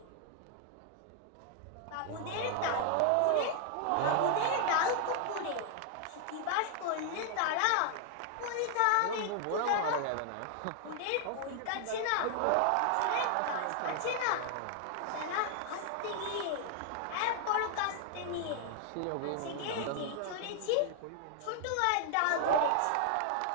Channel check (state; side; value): different; both; correlation 0.00